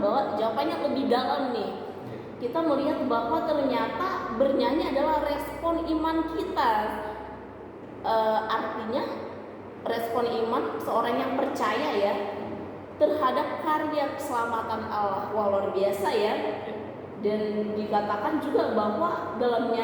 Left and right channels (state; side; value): identical; both; correlation 1.00